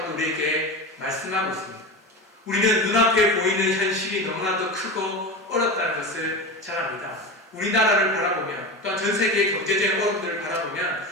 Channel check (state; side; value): normal; both; correlation 0.25